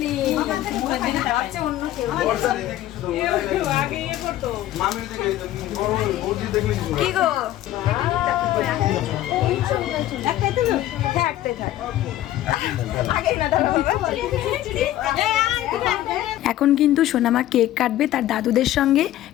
কি গো এখন কিন্তু সোনামা কেক কাটবে তার দাদুদের সঙ্গে,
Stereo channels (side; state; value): right; quieter; 13.8 dB